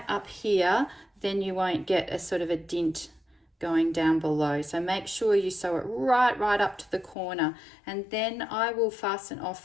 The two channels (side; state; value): right; drops out; at 7.2 s